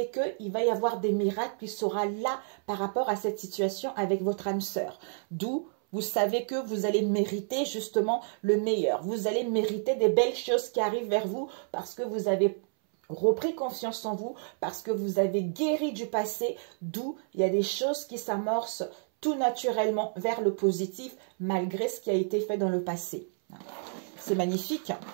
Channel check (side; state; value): left; silent; 58 dB below the other